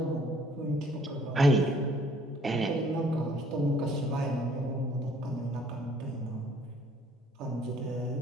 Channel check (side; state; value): both; normal; correlation 0.59